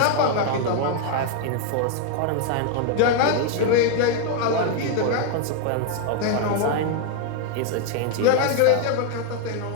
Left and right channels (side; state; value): both; different; correlation 0.00